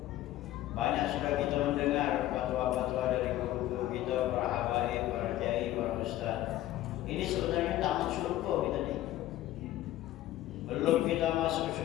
Banyak sudah kita mendengar fatwa-fatwa dari guru-guru kita, para habaib, para kiai, para ustaz. Ini sebenarnya taman surga kita nih. Belum kita masuk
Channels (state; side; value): quieter; right; 14.4 dB